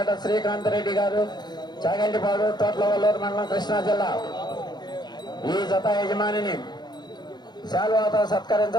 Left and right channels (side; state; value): right; late; 0.21 ms